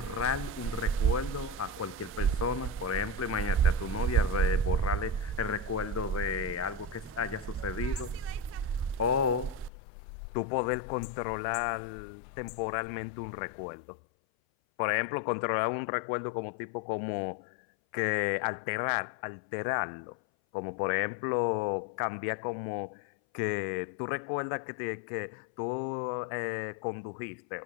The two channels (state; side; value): drops out; right; at 9.7 s